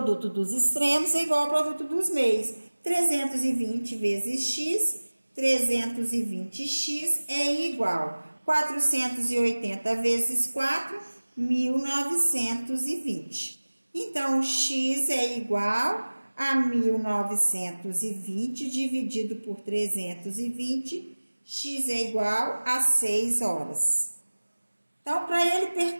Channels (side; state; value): both; inverted; correlation -1.00